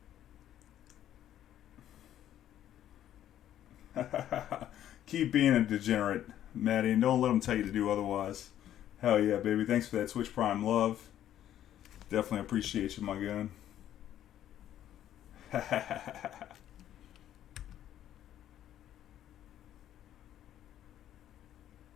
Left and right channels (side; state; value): right; quieter; 11.5 dB